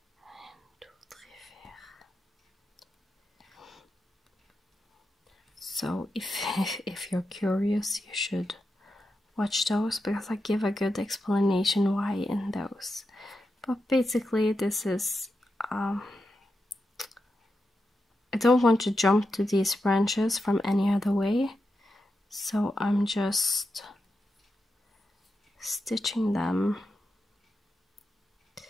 So if you're curious, you should watch those, because I give a good explanation why in those. But basically this is, I don't want to jump to these branches from any other way, so I'm just stitching them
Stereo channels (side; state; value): both; normal; correlation 0.88